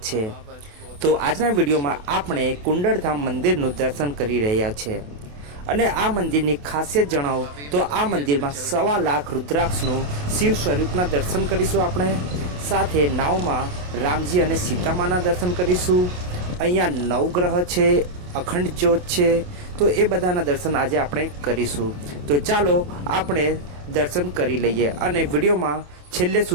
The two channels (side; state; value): left; late; 28 ms